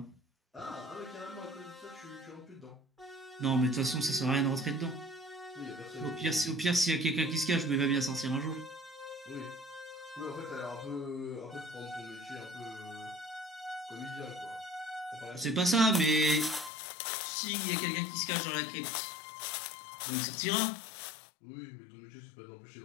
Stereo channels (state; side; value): drops out; right; at 16.7 s